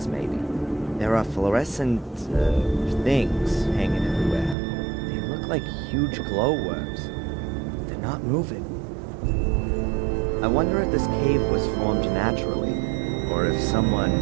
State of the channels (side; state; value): left; drops out; at 4.5 s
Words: maybe. There are fluorescent, things hanging everywhere. They look like huge glowworms. They're not moving. I wonder if this cave was formed naturally, or if someone,